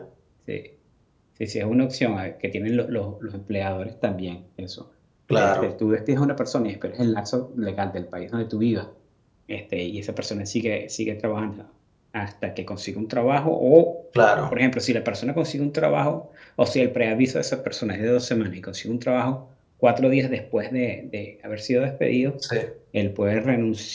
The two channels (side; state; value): both; identical; correlation 1.00